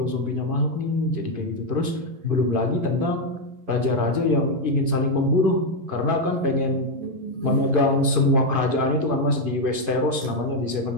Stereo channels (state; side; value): late; left; 11 ms